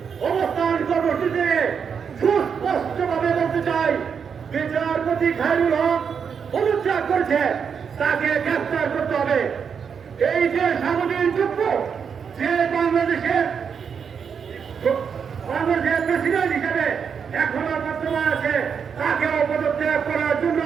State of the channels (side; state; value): left; quieter; 6.7 dB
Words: অবস্থান কর্মসূচিতে সুস্পষ্টভাবে বলতে চাই, বিচারপতি খায়রুল হক পদত্যাগ করেছে, তাকে গ্রেফতার করতে হবে। এই যে সামুদ্রিক যুদ্ধ, যে বাংলাদেশের প্রেসিডেন্ট হিসেবে এখনো বর্তমান আছে, তাকেও পদত্যাগ করার জন্য